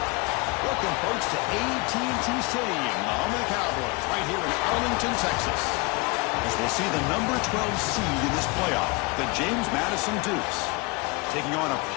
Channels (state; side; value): quieter; right; 26.7 dB